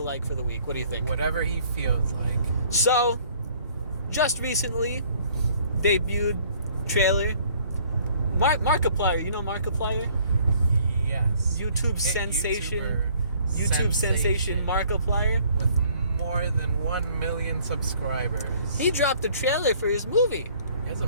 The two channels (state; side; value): inverted; both; correlation -0.59